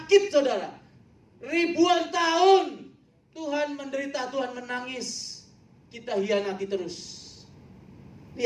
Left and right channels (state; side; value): identical; both; correlation 1.00